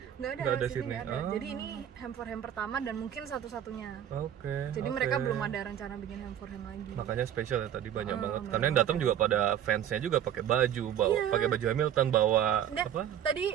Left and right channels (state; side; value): quieter; left; 10.1 dB